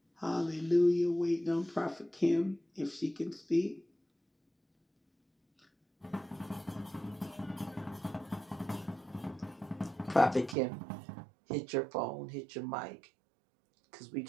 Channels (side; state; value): left; drops out; at 10.6 s